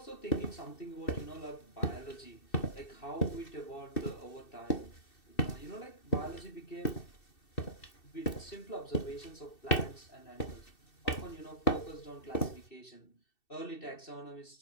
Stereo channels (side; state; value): right; late; 2.7 ms